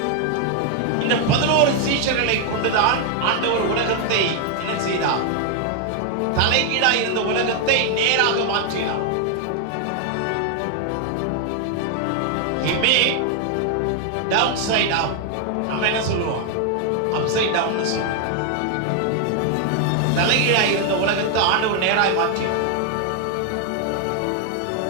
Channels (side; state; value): both; different; correlation 0.00